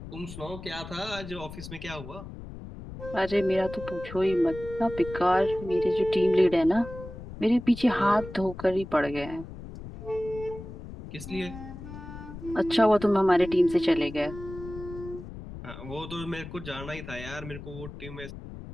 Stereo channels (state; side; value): noise; left; rumble, 12 dB below the sound